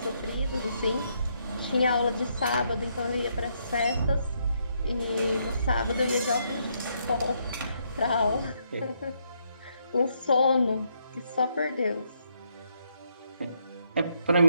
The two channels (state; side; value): inverted; both; correlation -0.75